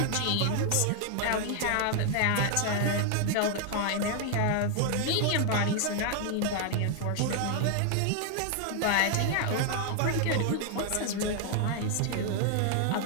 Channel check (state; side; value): different; both; correlation 0.00